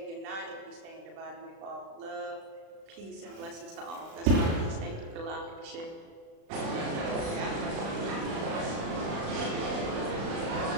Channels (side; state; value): left; late; 36 ms